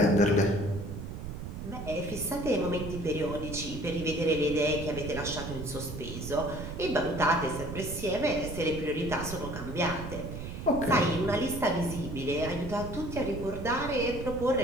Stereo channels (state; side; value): noise; right; rumble, 8 dB below the sound